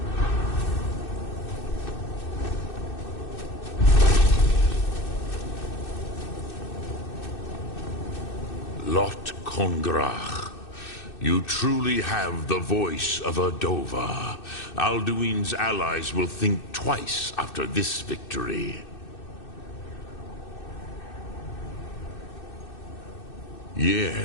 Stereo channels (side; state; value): right; late; 2.6 ms